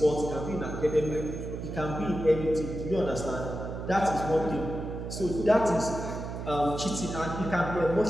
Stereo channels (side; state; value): right; noise; hum, 7 dB below the sound